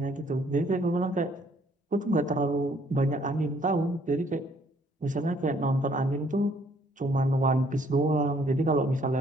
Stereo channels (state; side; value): normal; both; correlation 0.64